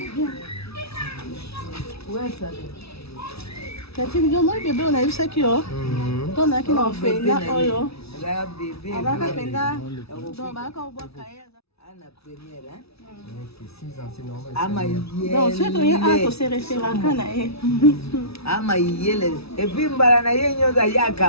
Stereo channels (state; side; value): late; right; 0.78 ms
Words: ouais Salem kati ndio bebe unayusa kio tona kina ofela oyo la bébé abaka penda donc baka ubaka yeza ana première hein c'est 6 ans c'est normal ama yele donc surtout ya ato se référent kana ama yele et puis mbala na ye nyoza